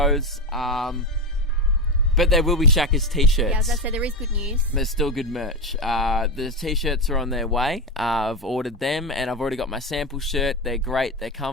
but there will be Shaka's t-shirts. Yeah, as I said, there is good news. There's still good merch. The t-shirts are on their way. I've ordered them, and I've already got my sample shirt. They're great. They're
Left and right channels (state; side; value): normal; both; correlation 0.15